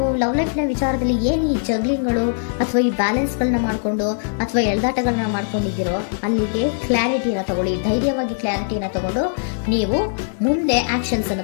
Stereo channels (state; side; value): silent; right; digital silence